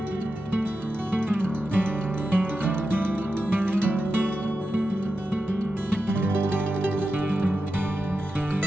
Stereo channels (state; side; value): normal; both; correlation 0.90